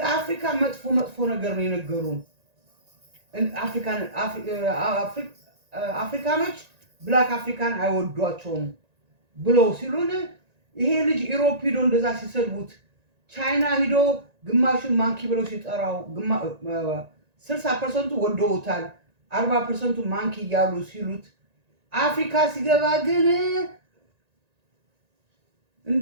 አፍሪካ መጥፎ ነገር ነው የነገሩን አፍሪካኖች ብላክ አፍሪካን አይወዷቸውም ብለው ሲሉን ይሄ ልጅ ኢሮፕ ሄዶ እንደዛ ሲሰልቡት ቻይና ሄዶ ግማሹን ማንኪ ብለው ሲጠራው 60% ወደውታል 40% ማንኪ ያሉ ሲሉት አፍሪካ ሲገባ ግን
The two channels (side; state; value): left; late; 1.9 ms